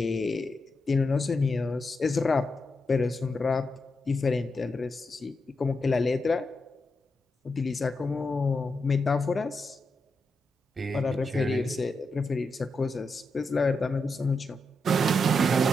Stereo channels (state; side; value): normal; both; correlation 0.85